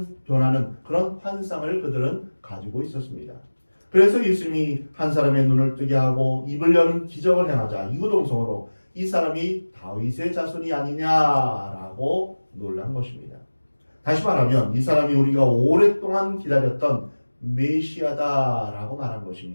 변하는 그런 환상을 그들은 가지고 있었습니다. 그래서 예수님이 한 사람의 눈을 뜨게 하고 입을 여는 기적을 행하자 이구동성으로 이 사람이 다윗의 자손이 아니냐라고 놀란 것입니다. 다시 말하면 이 사람이 우리가 오랫동안 기다렸던 메시아다라고 말한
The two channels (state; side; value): inverted; both; correlation -1.00